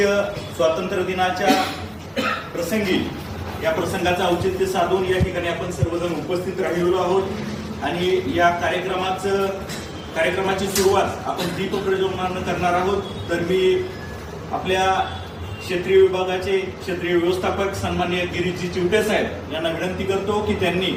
स्वातंत्र्य दिनाच्या प्रसंगी या प्रसंगाचं औचित्य साधून या ठिकाणी आपण सर्वजण उपस्थित राहिलेलो आहोत आणि या कार्यक्रमाची सुरुवात आपण दीप प्रज्वलनानं करणार आहोत। तर मी आपल्या क्षेत्रीय विभागाचे क्षेत्रीय व्यवस्थापक सन्माननीय गिरीजी चिवटे साहेब यांना विनंती करतो की त्यांनी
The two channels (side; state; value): both; identical; correlation 1.00